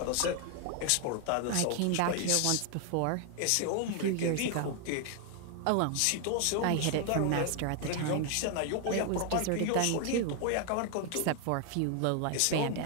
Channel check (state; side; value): different; both; correlation 0.00